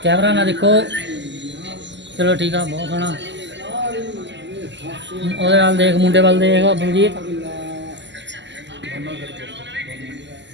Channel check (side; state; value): left; late; 0.53 ms